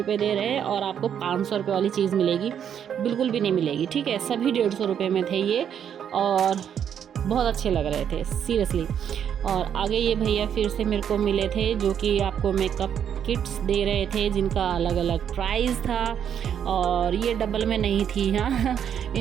दे रहे हैं और आपको 500 रुपये वाली चीज़ मिलेगी, बिल्कुल भी नहीं मिलेगी, ठीक है। सभी 150 रुपये में थे ये और बहुत अच्छे लग रहे थे सीरियसली। और आगे ये भैया फिर से मेरे को मिले थे जो कि आपको मेकअप किट्स दे रहे थे जिनका अलग अलग प्राइस था। और ये डबल में नहीं थी, हाँ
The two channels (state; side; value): quieter; left; 8.7 dB